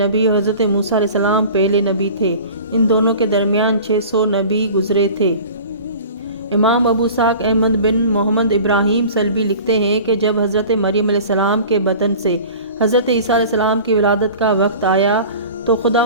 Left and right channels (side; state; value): both; inverted; correlation -0.41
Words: और हज़रत मूसा अलैहिस्सलाम पहले नबी थे। इन दोनों के दरमियान 600 नबी गुज़रे थे। इमाम अबू इस्हाक़ अहमद बिन मोहम्मद इब्राहीम सल्बी लिखते हैं कि जब हज़रत मरियम अलैहिस्सलाम के बतन से हज़रत ईसा अलैहिस्सलाम की विलादत का वक्त आया तो